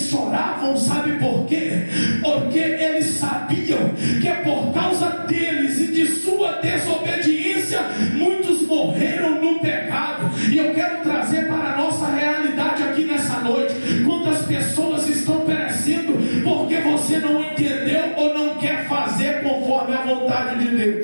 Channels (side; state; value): both; inverted; correlation -1.00